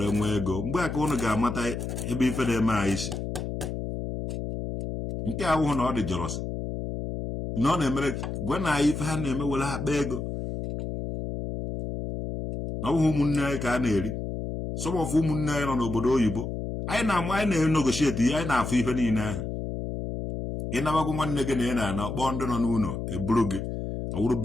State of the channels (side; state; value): left; noise; hum, 5 dB below the sound